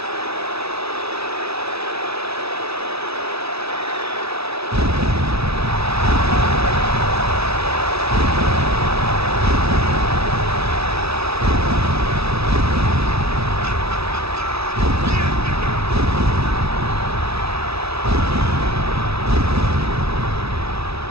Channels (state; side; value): late; left; 0.78 ms